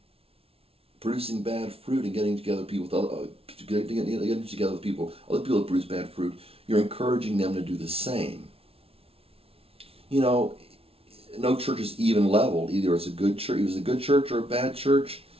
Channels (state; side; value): late; left; 0.28 ms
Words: producing bad fruit and getting together with people, getting together with people, other people that produce bad fruit, you're encouraging them to do the same. You know, no church is even leveled. Either it's a good church, it was a good church or a bad church,